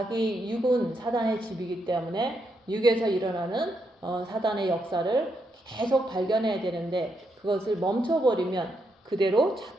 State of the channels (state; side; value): normal; both; correlation 0.80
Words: 육은 사단의 집이기 때문에 육에서 일어나는 사단의 역사를 계속 발견해야 되는데 그것을 멈춰버리면 그대로